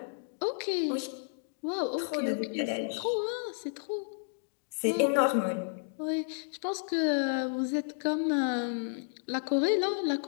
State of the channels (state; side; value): silent; right; digital silence